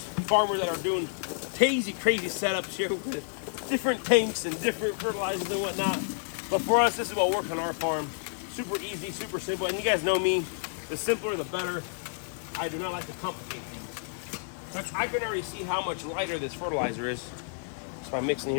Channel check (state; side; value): silent; right; digital silence